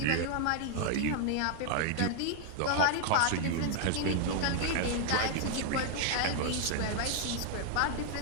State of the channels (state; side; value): different; both; correlation 0.00